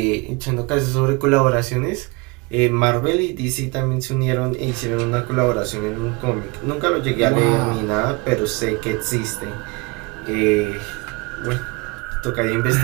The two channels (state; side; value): quieter; left; 26.8 dB